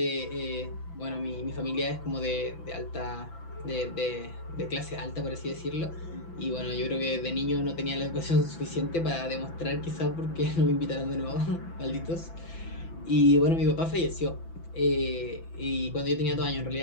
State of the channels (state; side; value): late; right; 6.0 ms